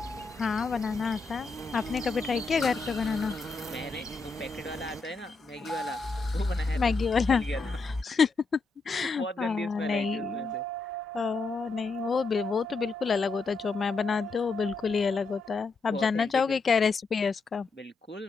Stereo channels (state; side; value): quieter; right; 4.0 dB